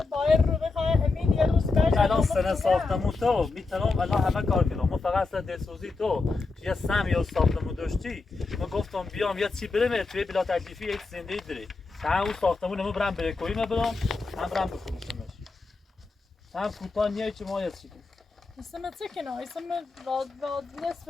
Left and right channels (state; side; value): quieter; right; 3.9 dB